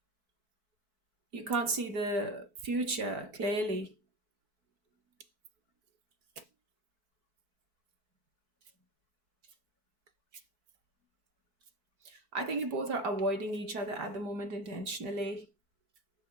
You can't see the future clearly. I think you both are avoiding each other at the moment intentionally.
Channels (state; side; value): late; left; 4.6 ms